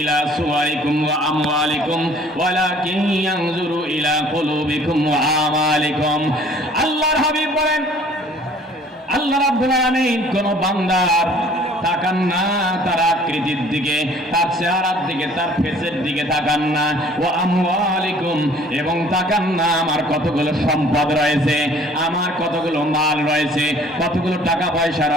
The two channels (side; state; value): both; normal; correlation 0.54